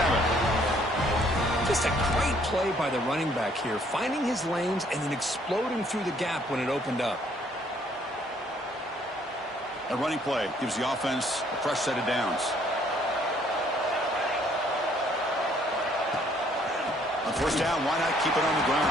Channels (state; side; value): normal; both; correlation 0.64